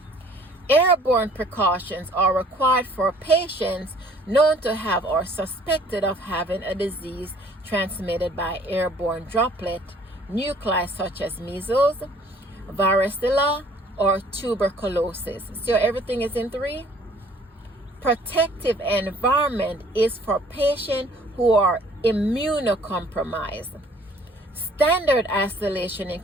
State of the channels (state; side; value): normal; both; correlation 0.56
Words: Airborne precautions are required for patients known to have or suspected of having a disease transmitted by airborne droplet nuclei such as measles, varicella, or tuberculosis. So everything is in 3. Protective environment is for patients who are immunocompromised. Standard isolation